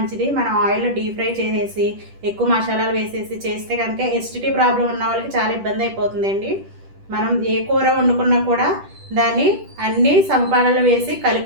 మనం ఆయిల్లో డీప్ ఫ్రై చేసేసి ఎక్కువ మసాలాలు వేసేసి చేస్తే కనుక ఎసిడిటీ ప్రాబ్లం ఉన్న వాళ్ళకి చాలా ఇబ్బంది అయిపోతుందండి. మనం ఏ కూర వండుకున్నా కూడా దాన్ని అన్ని సమపాలలో వేసి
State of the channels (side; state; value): left; late; 10 ms